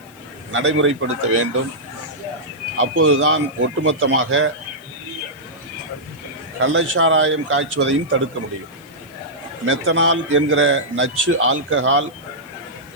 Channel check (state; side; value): noise; left; hiss, 27 dB below the sound